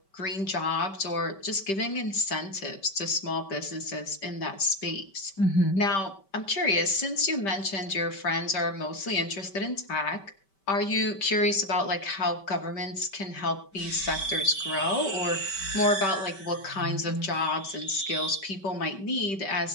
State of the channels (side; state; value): right; late; 5.2 ms